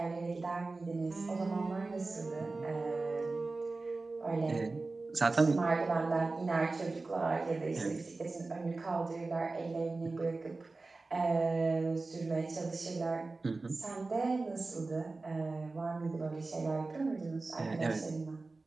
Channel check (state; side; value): quieter; left; 3.5 dB